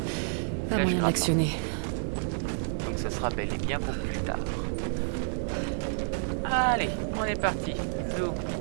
Flèche moyen grappin. d'actionner. Donc ce sera bel et bien pour plus tard. Allez, on est parti. Zou.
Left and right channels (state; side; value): silent; left; 58 dB below the other